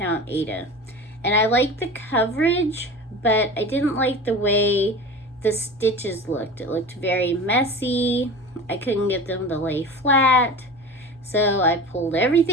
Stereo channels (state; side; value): normal; both; correlation 0.33